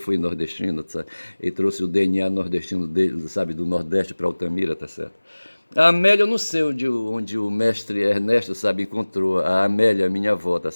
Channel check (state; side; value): inverted; both; correlation -1.00